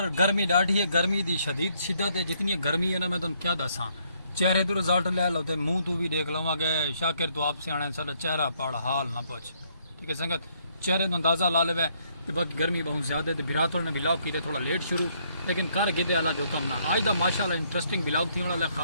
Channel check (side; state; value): both; inverted; correlation -0.70